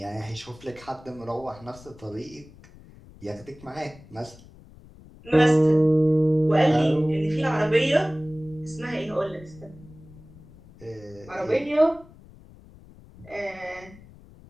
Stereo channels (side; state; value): left; noise; rumble, 22 dB below the sound